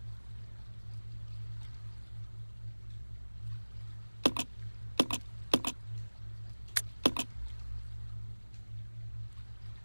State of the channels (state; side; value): inverted; both; correlation -1.00